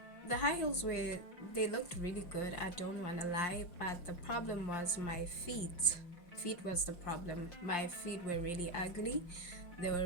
the high heels they looked really good, I don't want to lie, but the problem was my feet. Feet was the problem. My feet were really ugly. They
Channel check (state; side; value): late; right; 5.7 ms